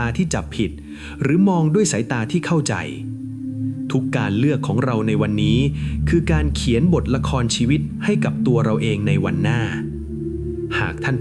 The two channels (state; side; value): identical; both; correlation 1.00